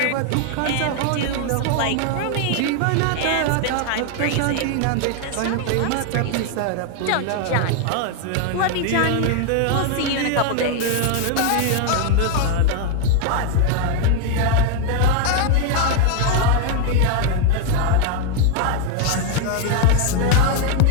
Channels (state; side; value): different; both; correlation 0.01